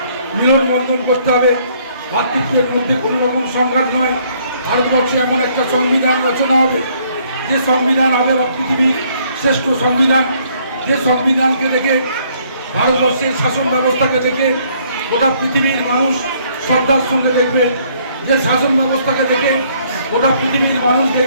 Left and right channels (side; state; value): both; inverted; correlation -0.65